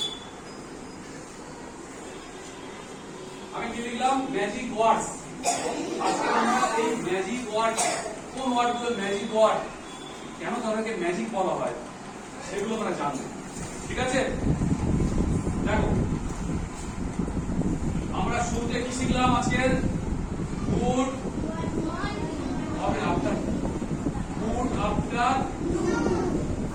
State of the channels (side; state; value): both; identical; correlation 1.00